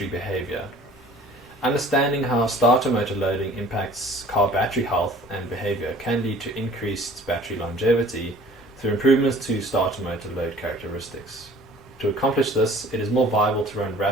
behavior. Understanding how starter motor loading impacts car battery health and behavior can lead to increased battery longevity through improvements to starter motor load characteristics. To accomplish this, it is more viable to run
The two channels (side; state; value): both; normal; correlation 0.50